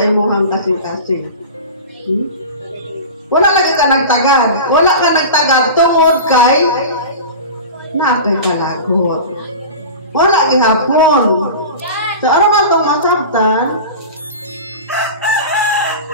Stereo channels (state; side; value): inverted; both; correlation -0.32